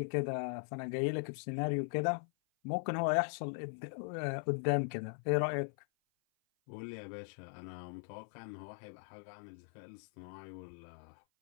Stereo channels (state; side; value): silent; right; 52 dB below the other